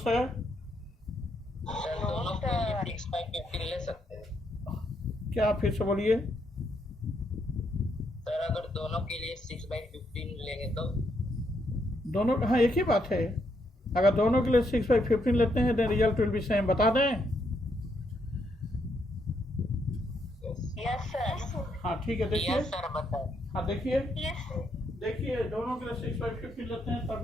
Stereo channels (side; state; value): both; normal; correlation 0.76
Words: है? सर दोनों के लिए 6 by 15 ले सकते हैं. क्या फिर से बोलिए. सर अगर दोनों के लिए 6 by 15 लेंगे तो दोनों, हाँ एक ही बात है. अगर दोनों के लिए 6 by 15 लेते हैं then result will be same. बता दें? Yes, sir. हाँ ठीक है. देखिए. यस सर बताएं. हाँ देखिए. Yes, sir. देखिए दोनों के लिए 6 by 15 लेते हैं